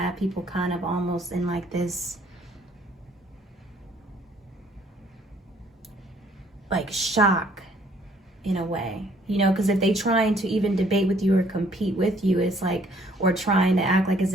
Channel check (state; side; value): normal; both; correlation 0.62